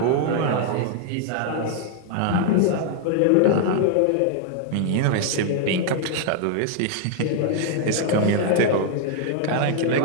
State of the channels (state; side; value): different; both; correlation 0.00